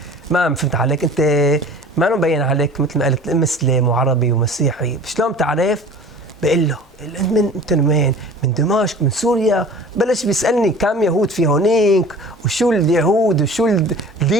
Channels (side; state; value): both; normal; correlation 0.43